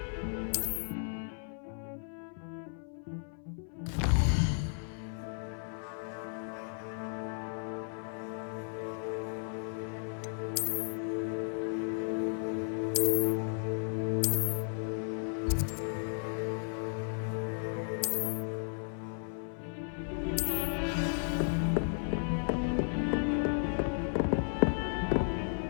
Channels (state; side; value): silent; right; 55 dB below the other